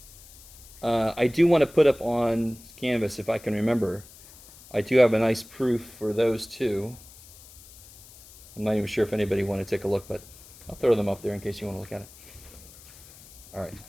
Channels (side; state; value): left; noise; hiss, 21 dB below the sound